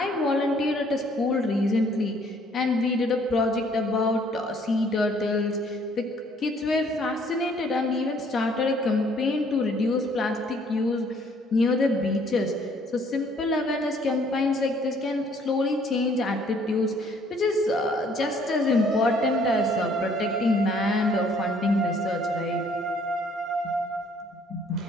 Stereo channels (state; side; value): normal; both; correlation 0.61